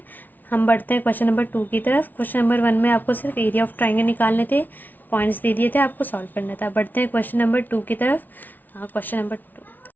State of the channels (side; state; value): right; late; 0.083 ms